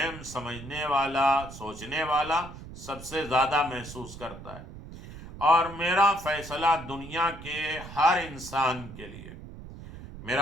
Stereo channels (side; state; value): right; noise; rumble, 14 dB below the sound